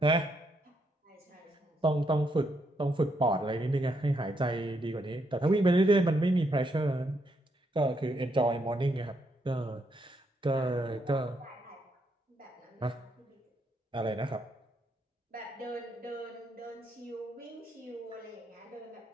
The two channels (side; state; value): both; normal; correlation 0.77